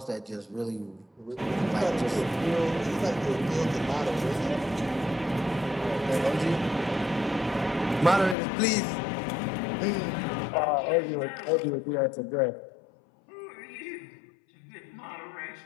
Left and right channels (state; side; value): drops out; right; at 8.3 s